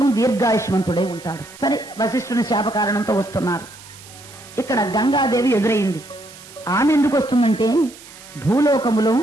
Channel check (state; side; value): noise; right; hiss, 19 dB below the sound